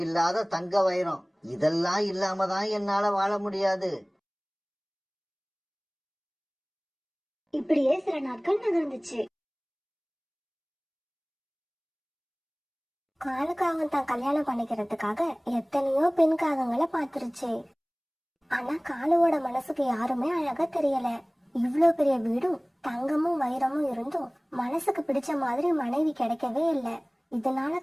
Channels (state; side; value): identical; both; correlation 1.00